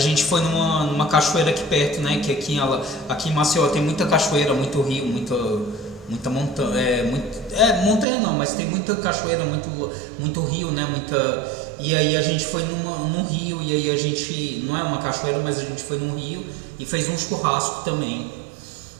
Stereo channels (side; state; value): left; drops out; at 8.1 s